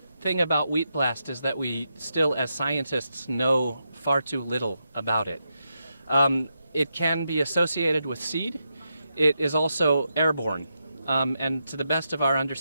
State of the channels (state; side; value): inverted; both; correlation -0.85